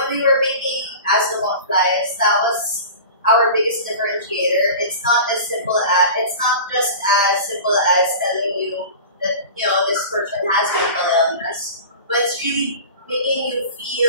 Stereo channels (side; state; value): both; inverted; correlation -0.36